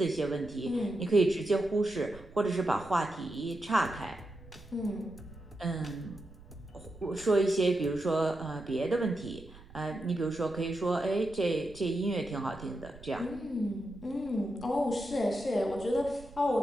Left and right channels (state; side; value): noise; right; rumble, 20 dB below the sound